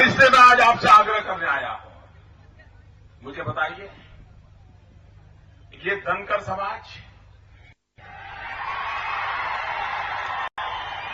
इसलिए मैं आज आपसे आग्रह करने आया हूं, मुझे बताइए, ये धनकर समाज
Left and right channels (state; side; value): identical; both; correlation 1.00